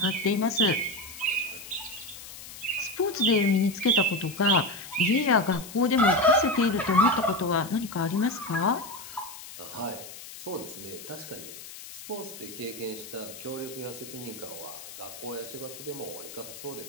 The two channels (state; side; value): noise; left; hiss, 14 dB below the sound